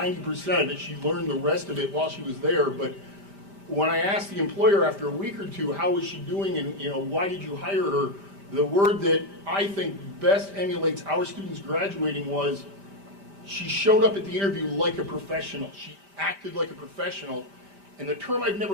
of it. She learned the rest of it while she was there. But when I asked the employer after a week or two, how was she doing and why did you hire her, the word that I think best emulates our students graduating was she showed up at the interview like a professional. She acted like a professional. And the term I've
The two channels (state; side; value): late; left; 5.1 ms